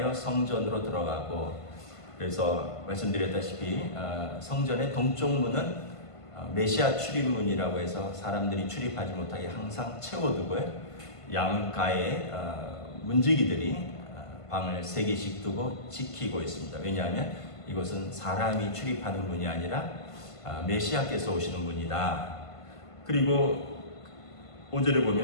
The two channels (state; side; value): late; right; 1.5 ms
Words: 성전으로 들어가고, 그래서 말씀드렸다시피 성전의 동쪽 문은 메시아 출입문이라고 해서 사람들이 출입하지 못하게 항상 채워두고요. 양가에 문지기들이 방을 3개씩 두고 지키고 있습니다. 왜냐하면 이곳은 사람이 출입하는 문이 아니라 메시아께서 오시는 문이다. 그리고 5절에